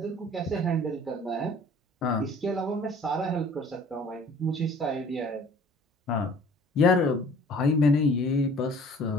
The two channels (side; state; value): both; normal; correlation 0.51